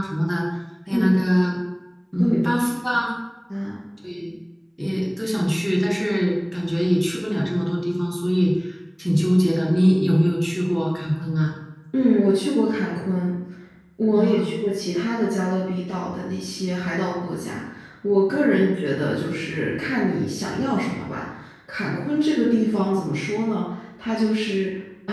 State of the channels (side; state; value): both; identical; correlation 1.00